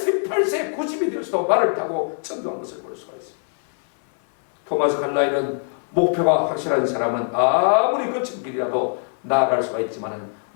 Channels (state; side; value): silent; right; 64 dB below the other